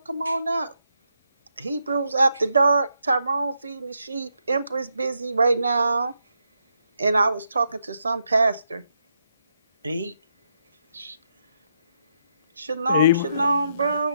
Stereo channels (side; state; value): both; inverted; correlation -0.80